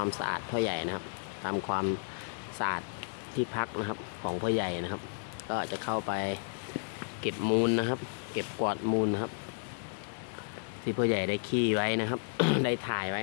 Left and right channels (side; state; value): right; silent; digital silence